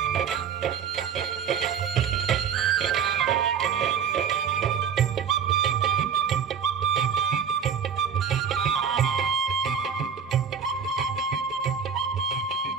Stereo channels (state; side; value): quieter; left; 7.1 dB